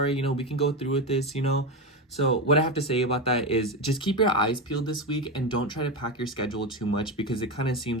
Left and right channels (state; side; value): normal; both; correlation 0.15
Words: you know, we can go through with this, you know. So what I have to say about that is just keep your eyes peeled this week, and don't try to pack your schedule too much, because it kind of